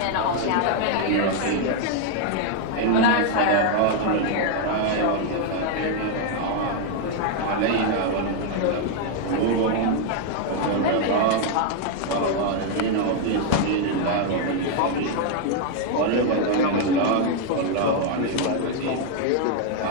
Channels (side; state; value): both; different; correlation 0.00